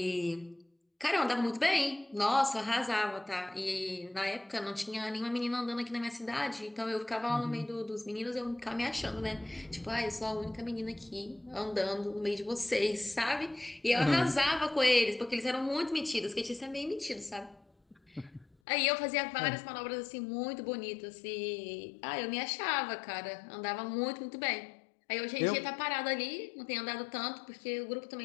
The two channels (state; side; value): drops out; right; at 18.6 s